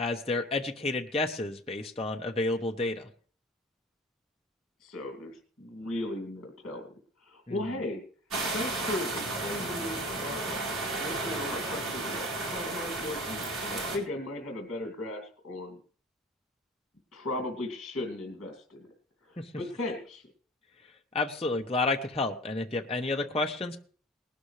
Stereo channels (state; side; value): normal; both; correlation 0.40